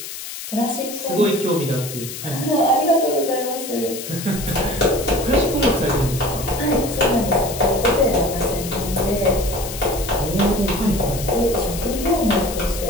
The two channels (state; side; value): noise; left; hiss, 9 dB below the sound